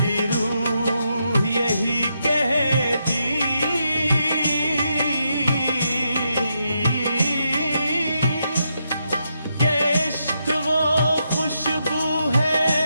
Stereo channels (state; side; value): inverted; both; correlation -0.82